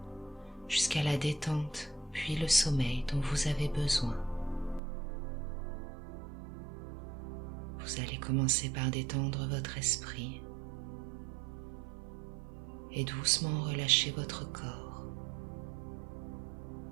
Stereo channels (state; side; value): drops out; left; at 4.8 s